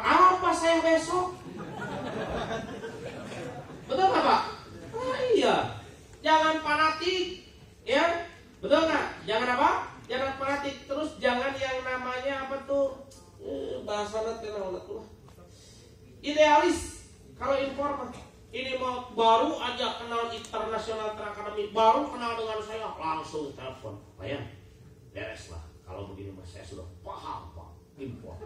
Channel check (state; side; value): identical; both; correlation 1.00